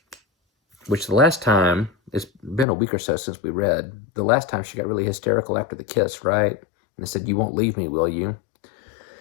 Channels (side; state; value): right; drops out; at 2.7 s